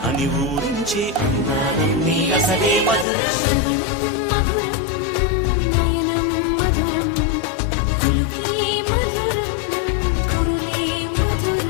అని ఊరించే అందాలన్నీ అసలే మధురం శ్రవణం మధురం నయనం మధురం కులుకే మధురం కురులే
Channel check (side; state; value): right; drops out; at 3.1 s